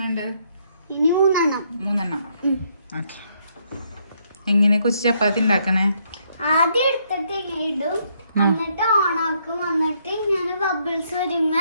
മൂന്നെണ്ണം. ഓക്കെ. എങ്ങനെ കൊച്ചു ചപ്പാത്തി ഉണ്ടാക്കണേ? ആദ്യം എടുത്തിട്ട് ഇടും, എന്നിട്ട് ഓണാക്കും, എന്നിട്ട് ഇങ്ങനെ ബബിൾസ്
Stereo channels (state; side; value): inverted; both; correlation -0.72